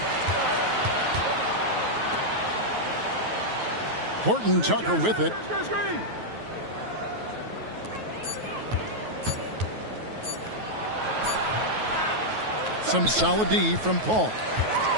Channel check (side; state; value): left; late; 9.3 ms